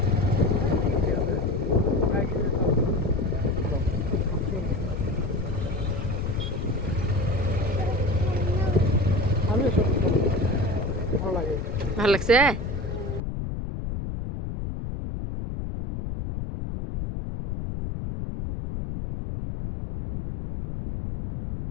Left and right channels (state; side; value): noise; left; rumble, 4 dB below the sound